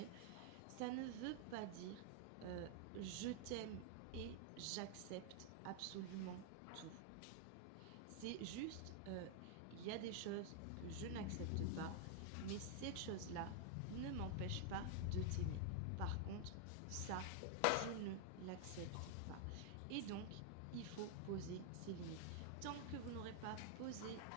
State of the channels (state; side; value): different; both; correlation 0.00